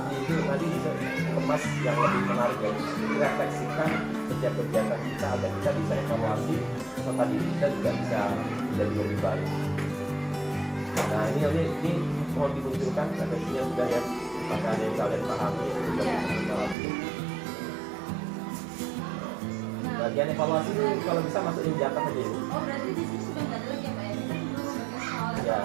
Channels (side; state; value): left; drops out; at 16.8 s